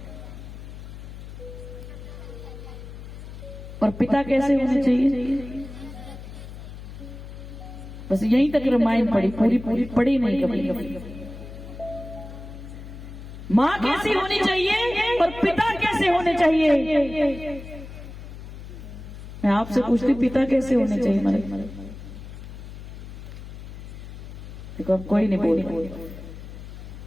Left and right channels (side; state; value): left; noise; hum, 12 dB below the sound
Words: और पिता कैसे होने चाहिए? बस यहीं तक रामायण पढ़ी, पूरी पढ़ी नहीं कभी। माँ कैसी होनी चाहिए और पिता कैसे होने चाहिए? मैं आपसे पूछती पिता कैसे होने चाहिए? मैंने देखो अब कोई नहीं बोल।